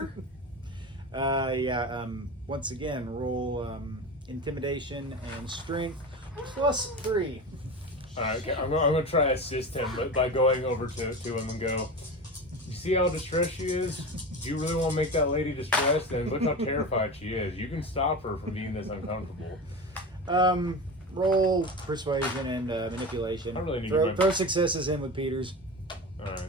Once again, roll intimidation and strength +3. All right, okay. I'm gonna try to assist him, but by going over to him and go. You see how distressed she is? Do you really want to make that lady distressed? And look how terrified she is. You can stop her from being this uncomfortable. Roll persuasion and manipulation. I really need throw successes in with Peter's. All right,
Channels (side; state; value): both; normal; correlation 0.27